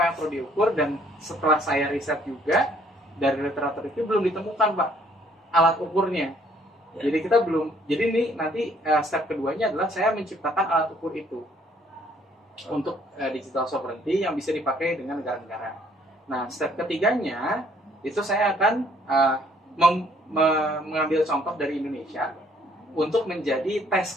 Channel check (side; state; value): both; normal; correlation 0.63